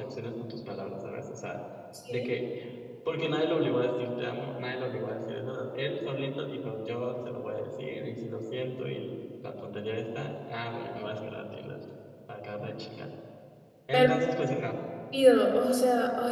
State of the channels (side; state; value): both; identical; correlation 1.00